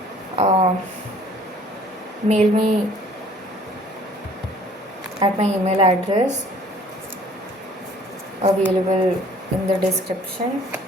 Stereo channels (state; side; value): normal; both; correlation 0.54